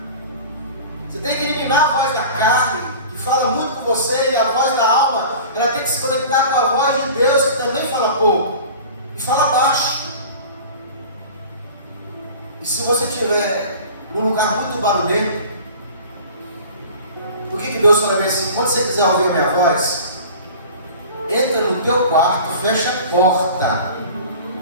Você tem que eliminar a voz da carne, que fala muito com você, e a voz da alma, ela tem que se conectar com a voz de Deus, que também fala pouco e fala baixo. E se você estiver num lugar muito barulhento, por que Deus fala assim? Quando você quiser ouvir a minha voz, entra no teu quarto, fecha a porta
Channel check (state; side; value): inverted; both; correlation -0.40